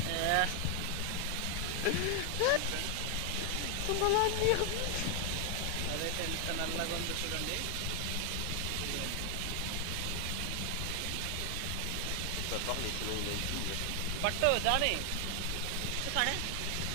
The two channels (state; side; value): different; both; correlation 0.00